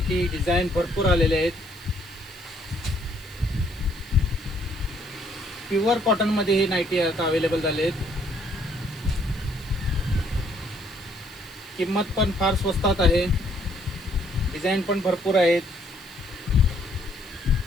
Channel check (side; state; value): right; noise; hiss, 22 dB below the sound